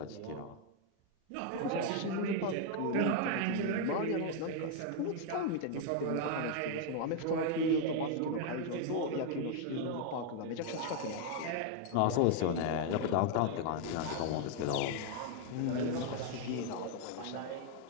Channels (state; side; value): different; both; correlation 0.00